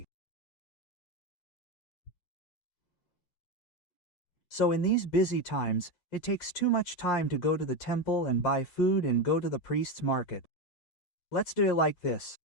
So in these busy times, it takes too much time to go to the temple and buy food and go to the priest's market. Let's do it like this.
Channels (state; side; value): late; right; 7.7 ms